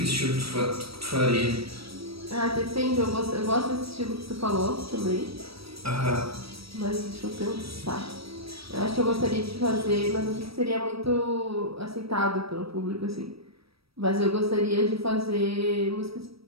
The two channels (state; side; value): late; left; 0.76 ms